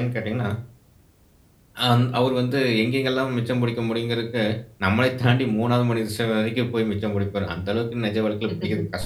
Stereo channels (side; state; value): both; identical; correlation 1.00